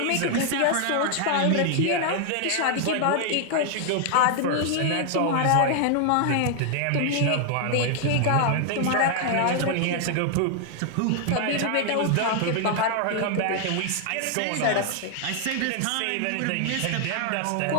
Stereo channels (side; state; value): both; different; correlation 0.00